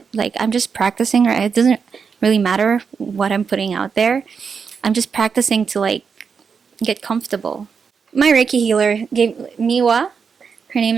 Like, I'm just practicing. Right? It doesn't really matter what I'm putting out there. I'm just practicing to, like, get comfortable. My Reiki healer gave Miwa. Her name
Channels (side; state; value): left; quieter; 5.9 dB